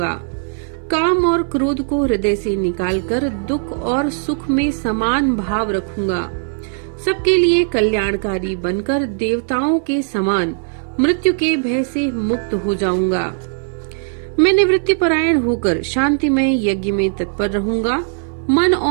काम और क्रोध को हृदय से निकालकर दुख और सुख में समान भाव रखूंगा। सबके लिए कल्याणकारी बनकर देवताओं के समान मृत्यु के भय से मुक्त हो जाऊंगा। मैं निवृत्ति परायण होकर शांतिमय यज्ञ में तत्पर रहूंगा। मन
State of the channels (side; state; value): left; silent; 66 dB below the other